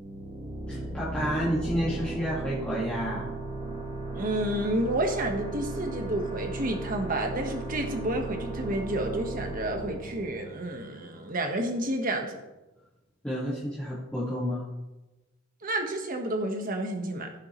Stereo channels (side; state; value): both; normal; correlation 0.48